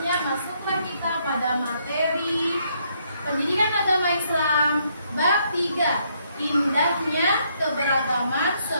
masuklah kita pada materi pendidikan agama Islam bab 3. Indahnya keberagaman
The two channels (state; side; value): inverted; both; correlation -0.72